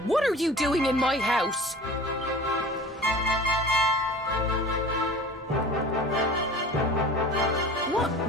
what are you doing in my house? What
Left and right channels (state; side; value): normal; both; correlation 0.40